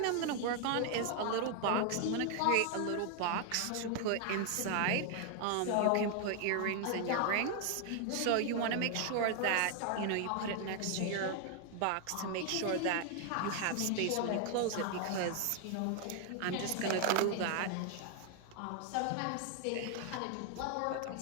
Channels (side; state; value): both; different; correlation 0.00